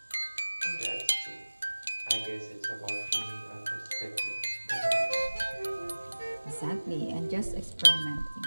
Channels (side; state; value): both; inverted; correlation -1.00